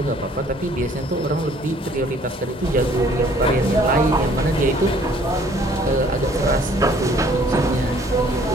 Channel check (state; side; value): normal; both; correlation 0.58